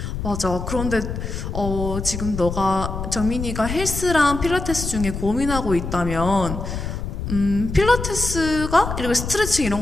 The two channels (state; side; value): noise; left; rumble, 5 dB below the sound